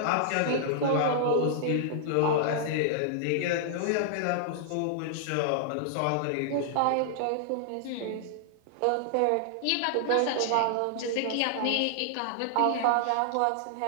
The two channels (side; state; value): both; different; correlation -0.01